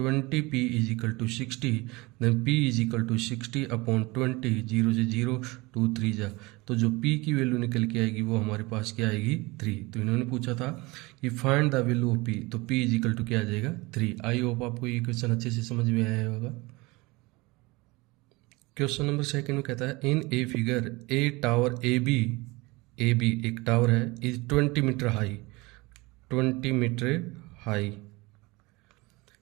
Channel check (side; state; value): left; quieter; 23.5 dB